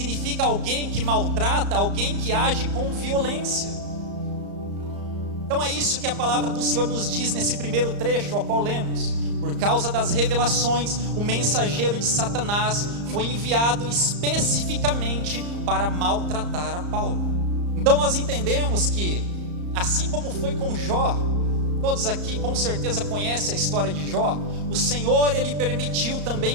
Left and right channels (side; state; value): left; late; 34 ms